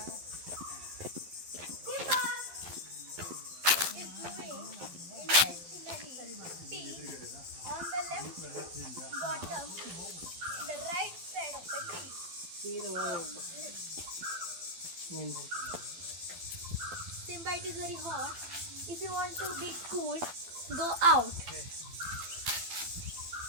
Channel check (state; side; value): late; left; 12 ms